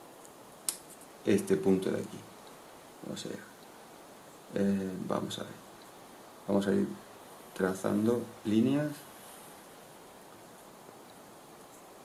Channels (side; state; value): both; identical; correlation 1.00